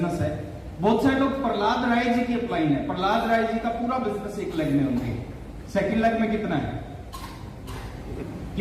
है। बहुत सारे लोग प्रहलाद राय जी की अपलाइन है, प्रहलाद राय जी का पूरा बिजनेस 1 लाख में होंगे। 2 लाख में कितना है?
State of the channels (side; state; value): both; identical; correlation 1.00